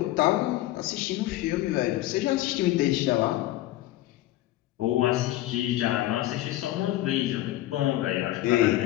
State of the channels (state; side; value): quieter; right; 15.8 dB